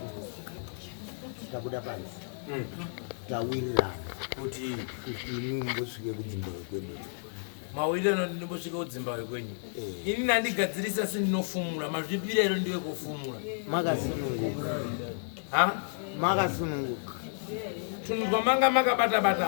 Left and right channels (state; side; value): silent; right; 57 dB below the other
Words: Tabuda pansi. Tawirirana. Kuti imwe mbosvike kudzimba kwedu. mawirano ndinombosvika kudzimba kwenyu. Ini nandigadzirisa sendinofumura, mazvipirero ndiwe kufumura. Makasununguka. Ha? Makasununguka. Tunzwa manga